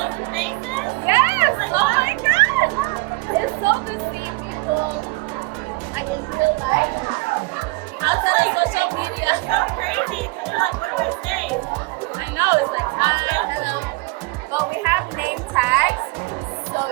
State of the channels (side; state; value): left; quieter; 25.1 dB